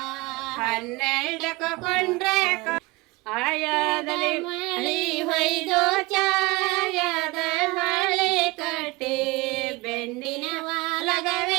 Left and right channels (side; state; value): left; quieter; 23.0 dB